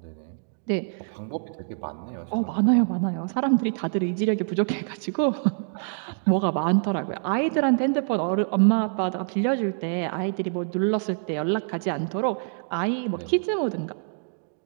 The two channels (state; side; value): silent; left; digital silence